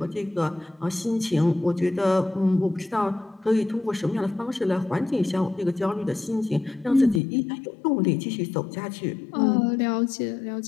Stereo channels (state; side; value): drops out; right; at 7.2 s